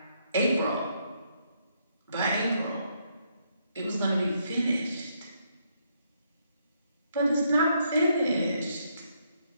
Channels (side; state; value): both; inverted; correlation -0.74